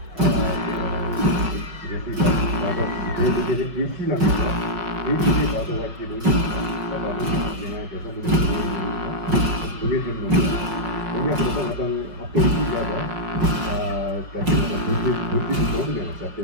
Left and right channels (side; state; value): left; late; 5.5 ms